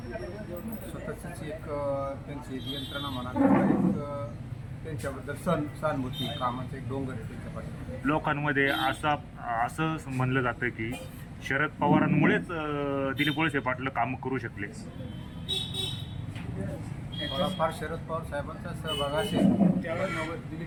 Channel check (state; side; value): identical; both; correlation 1.00